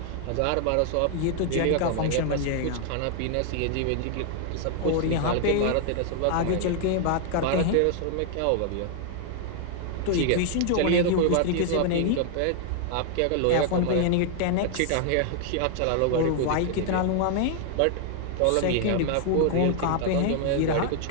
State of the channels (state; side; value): different; both; correlation 0.00